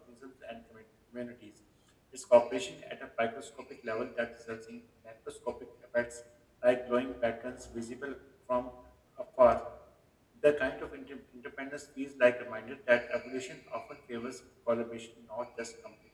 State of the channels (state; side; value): identical; both; correlation 1.00